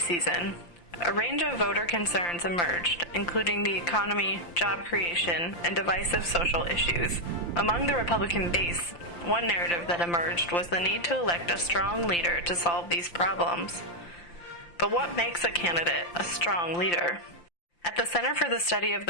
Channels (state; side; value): late; right; 5.8 ms